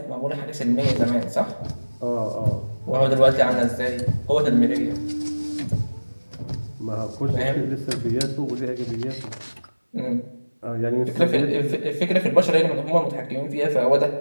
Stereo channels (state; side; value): inverted; both; correlation -1.00